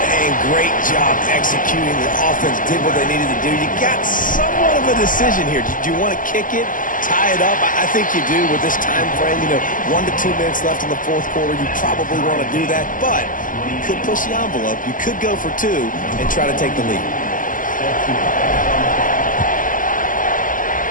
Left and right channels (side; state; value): right; late; 0.39 ms